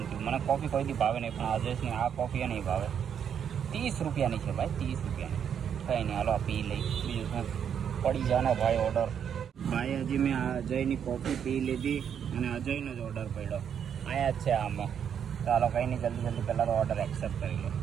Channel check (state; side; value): quieter; left; 8.2 dB